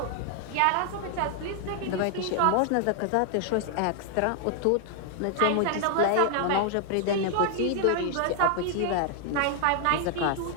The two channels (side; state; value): both; different; correlation 0.00